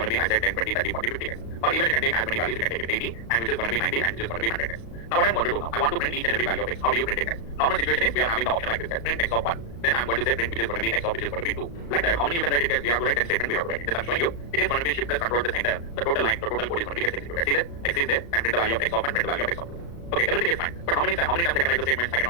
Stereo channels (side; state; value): right; late; 35 ms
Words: to be I said 10, 20, 30, 40, 50, guys. Or even you can take as many values, you can take it 80, and which is going to be 90, and which is going to be 100, guys. Now what I'm going to do now, I want to print each and every value of x. How do you print it, guys? Normal situation is we are having the option like this, guys. Print x of 1. Then I'm going to say print which is going to be x of which is going to be 2. Like that. How many you can write it, guys? We have to write 10 statements, we have to write it. Just I'm showing you. It is going to be shift plus control plus enter. The total line, the total code is going to be gets executed. See there? X is there, and print the value of x of 1, print the value of x of 2. Okay, everything is fine. But how many times I can write the statements? I